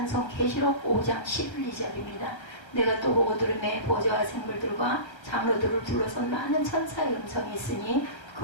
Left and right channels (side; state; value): right; late; 1.3 ms